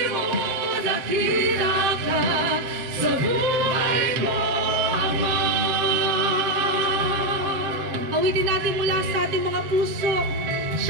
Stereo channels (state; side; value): late; left; 7.7 ms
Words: mo dakila ka sa buhay ko, Ama. Awitin natin mula sa ating mga puso.